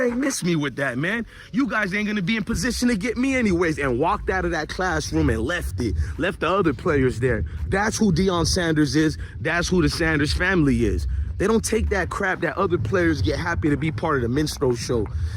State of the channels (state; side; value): identical; both; correlation 1.00